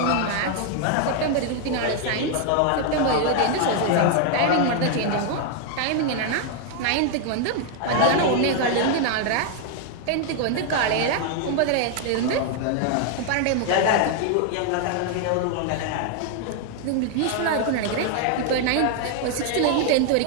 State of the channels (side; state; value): both; different; correlation 0.00